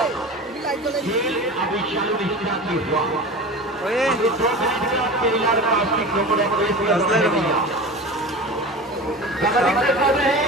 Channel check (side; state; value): both; normal; correlation 0.32